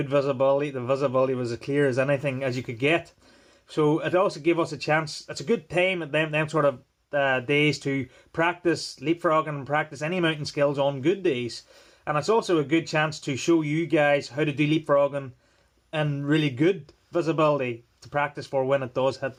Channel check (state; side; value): identical; both; correlation 1.00